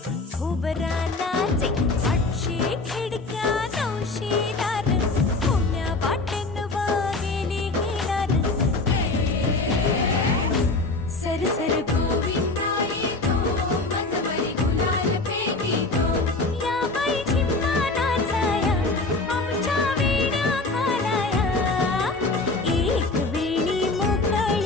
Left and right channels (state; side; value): quieter; right; 3.3 dB